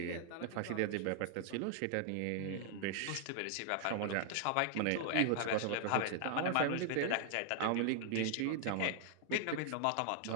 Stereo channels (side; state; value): both; different; correlation 0.00